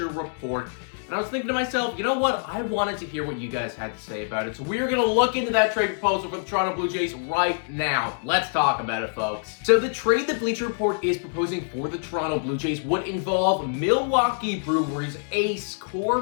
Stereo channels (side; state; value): right; silent; digital silence